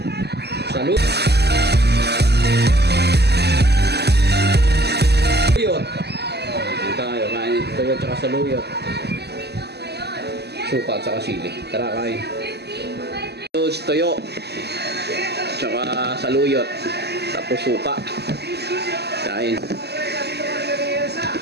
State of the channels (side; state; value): left; late; 0.48 ms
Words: saluyot. Saluyot. Tayo, kain tuyo, tsaka saluyot. Suka, tsaka sili. Tara, kain. Tuyo, tsaka saluyot. Tapos suka. Kain.